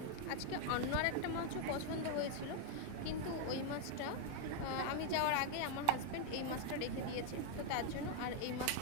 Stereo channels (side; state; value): both; different; correlation 0.00